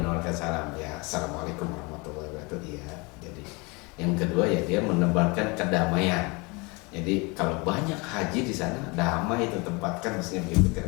menebarkan salam. Ya, assalamualaikum warahmatullahi wabarakatuh. Iya. Jadi yang kedua ya dia menebarkan kedamaian. Jadi kalau banyak haji di sana, damai itu tempatkan, maksudnya begitu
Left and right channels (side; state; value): right; quieter; 27.8 dB